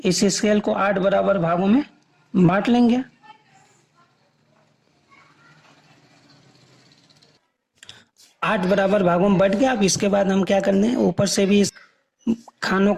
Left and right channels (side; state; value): both; identical; correlation 1.00